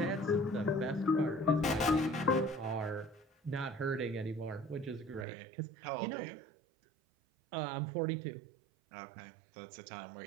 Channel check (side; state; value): left; drops out; at 5.2 s